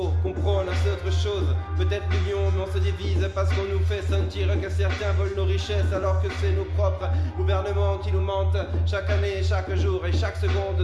comprendre, c'est autre chose. Peut-être l'union, mais on se divise parce qu'on nous fait sentir que certains veulent nos richesses alors que c'est nos propres gouvernements qui nous mentent chaque année, chaque jour et chaque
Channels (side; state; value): both; identical; correlation 1.00